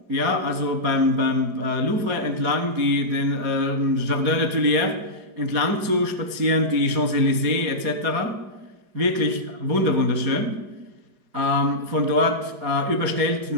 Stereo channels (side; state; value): left; late; 4.8 ms